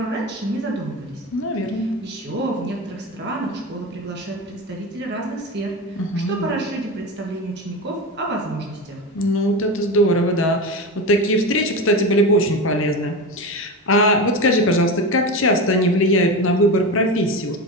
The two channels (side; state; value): both; normal; correlation 0.23